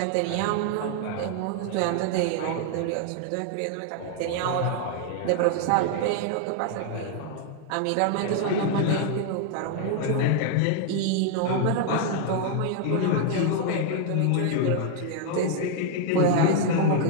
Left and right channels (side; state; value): both; different; correlation 0.00